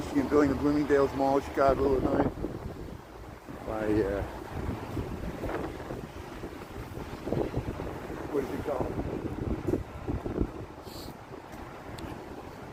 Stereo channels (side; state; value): both; identical; correlation 1.00